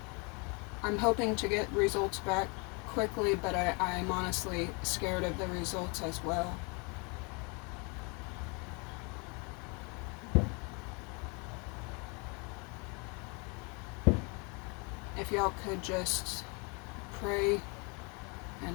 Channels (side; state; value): right; quieter; 32.0 dB